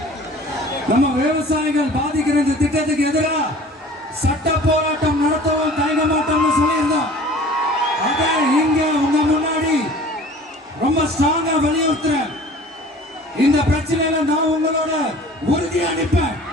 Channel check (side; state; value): both; normal; correlation 0.45